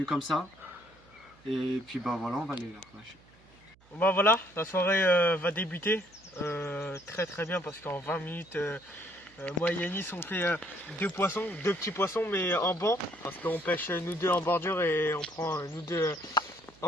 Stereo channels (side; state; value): right; noise; hum, 29 dB below the sound